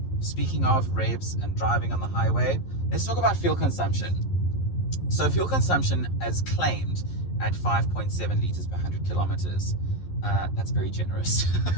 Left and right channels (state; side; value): late; right; 11 ms